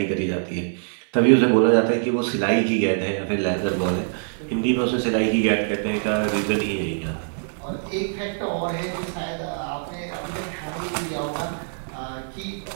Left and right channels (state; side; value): silent; left; digital silence